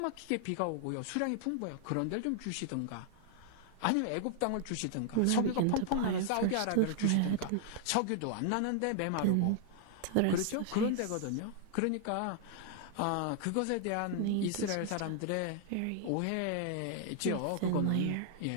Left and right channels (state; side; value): different; both; correlation 0.00